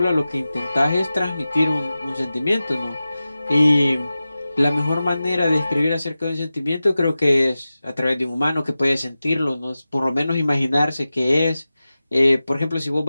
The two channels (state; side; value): inverted; both; correlation -0.95